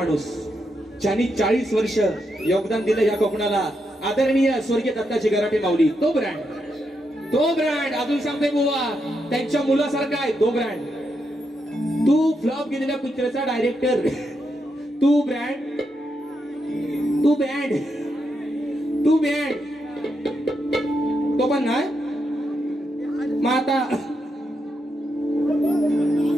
ज्यांनी 40 वर्ष योगदान दिलं या कोकणाला, आदरणीय स्वर्गीय दत्ताची गराटे माऊली. तो ब्रँड, तो ब्रँड. अजून सांगतोय बुवा त्यांच्या मुलासारखा आहे तो ब्रँड. तू फ्लॉप गेलेल्या पिक्चरचा डायरेक्टर, तू ब्रँड, तू बँड, तू बँड. तो पण नाही. मग आता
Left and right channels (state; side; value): normal; both; correlation 0.83